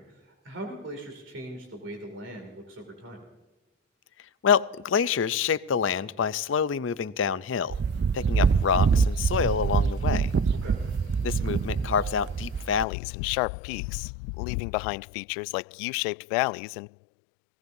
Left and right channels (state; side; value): drops out; right; at 12.9 s